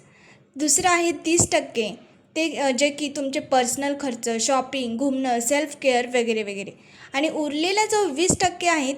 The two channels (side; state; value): both; identical; correlation 1.00